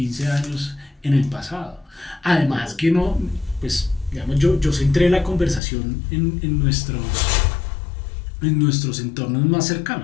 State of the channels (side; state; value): right; drops out; at 5.6 s